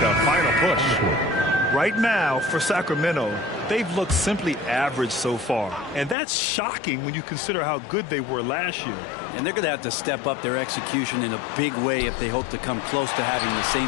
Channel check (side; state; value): right; drops out; at 6.2 s